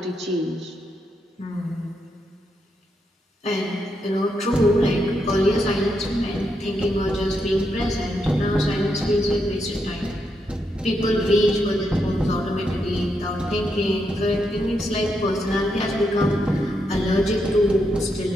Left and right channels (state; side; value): normal; both; correlation 0.81